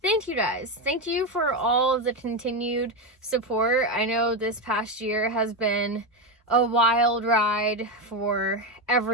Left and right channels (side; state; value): both; normal; correlation 0.12